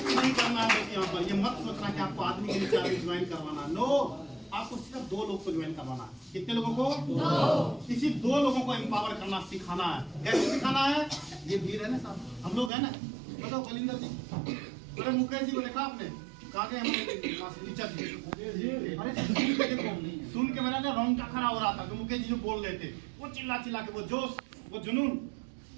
नहीं करना है यहाँ पर। ये मत सोचना कि आपको आदमी के नीचे आदमी ज्वाइन करवाना, नो, आपको सिर्फ 2 लोग को ज्वाइन करवाना है। कितने लोगों को? 2। इसी 2 लोगों को एम्पावर करना सिखाना है। कैसे सिखाना है? ये भीड़ है ना साहब, हम लोग है ना, बताओ बलिंदर जी, अरे मुकेश जी को देखा आपने? कहाँ गए हम? अरे सुन के मेरा ना रोंगटा खड़ा हो रहा था, जो मुकेश जी जो बोल रहे थे, वो चिल्ला चिल्ला के, वो जोश, वो जुनून,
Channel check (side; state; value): left; drops out; at 12.7 s